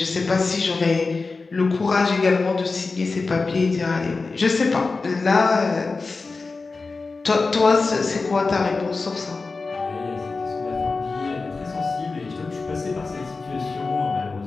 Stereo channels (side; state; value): right; quieter; 4.0 dB